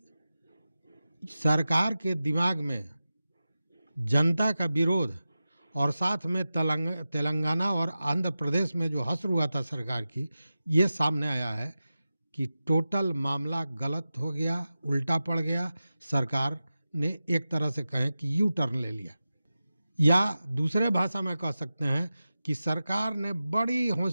सरकार के दिमाग में जनता का विरोध और साथ में तेलंगाना और आंध्र प्रदेश में जो हश्र हुआ था सरकार की, ये सामने आया है कि टोटल मामला गलत हो गया, उल्टा पड़ गया। सरकार ने एक तरह से कहें कि यू टर्न ले लिया, या दूसरे भाषा में कह सकते हैं कि सरकार ने बड़ी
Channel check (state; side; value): inverted; both; correlation -0.94